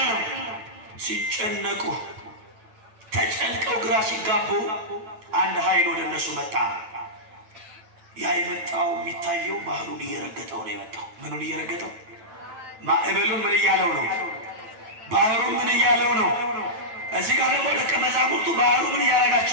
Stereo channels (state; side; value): late; left; 9.2 ms